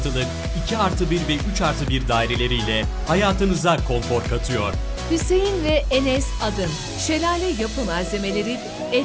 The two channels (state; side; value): identical; both; correlation 1.00